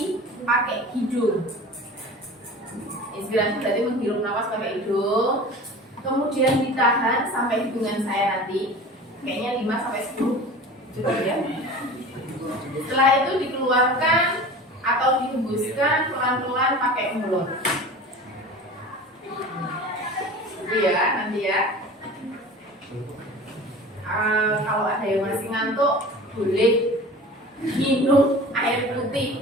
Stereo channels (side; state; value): both; normal; correlation 0.38